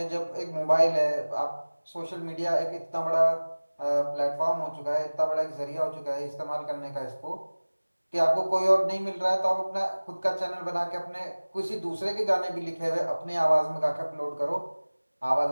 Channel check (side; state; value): both; inverted; correlation -1.00